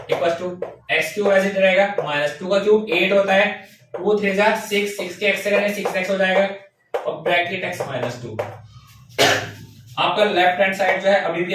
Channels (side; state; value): both; identical; correlation 1.00